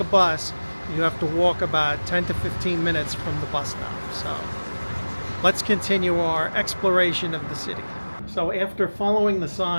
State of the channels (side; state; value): both; inverted; correlation -1.00